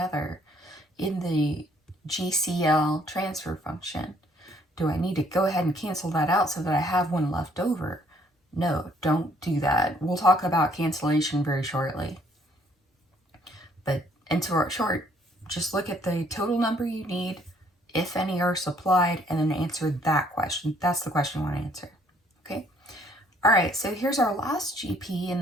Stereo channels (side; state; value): both; normal; correlation 0.64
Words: in the GCL transfer function. Do I need to go ahead and cancel that out so that I have 1 left over? No, don't do that. We'll talk about cancellation very shortly. But in short, just look at the total number you need, if any are supplied, and then answer that question. That's the question I want to answer. Okay. All right, so here's our last GP in